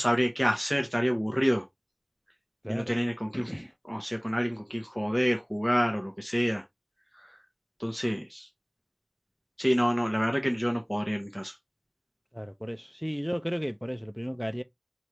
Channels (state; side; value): identical; both; correlation 1.00